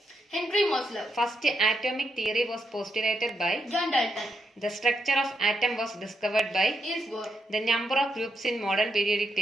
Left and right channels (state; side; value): normal; both; correlation 0.81